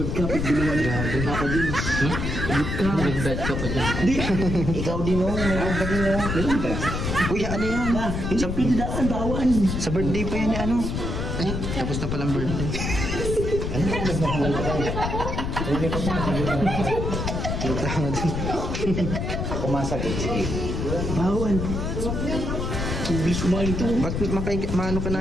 ka. Pagbiluan ka. Papa Jones. Lagot ka. Nag-bet ka pa dyan. Hindi. Ikaw din o. Meron ka din o. Meron ka. Uy, ano yan? Sa pindaan, bawan. Sa birthday pa yan ano? Ay, tapos na palang birthday. Ano ka? Nagmahal ka. Hindi pa pa. Tama din. Kumasakit. Sige. Bawan. Bilis kumain ito. Ba't maano ka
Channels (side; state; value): left; noise; rumble, 2 dB below the sound